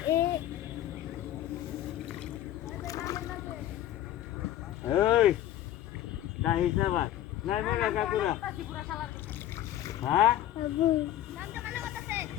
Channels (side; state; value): right; quieter; 12.6 dB